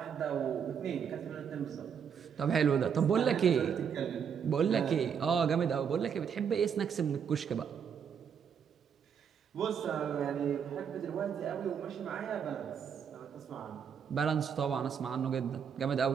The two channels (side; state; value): left; quieter; 7.4 dB